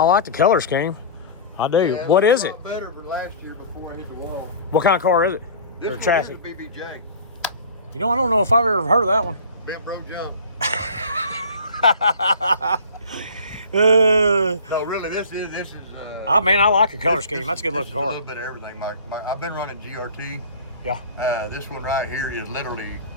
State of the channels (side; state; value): both; inverted; correlation -0.41